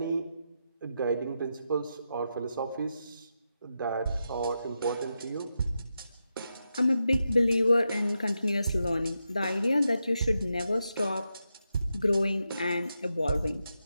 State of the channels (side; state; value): both; inverted; correlation -0.86